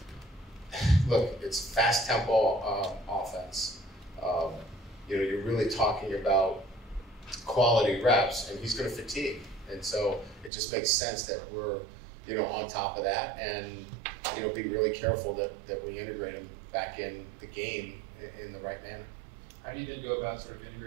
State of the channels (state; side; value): drops out; left; at 10.5 s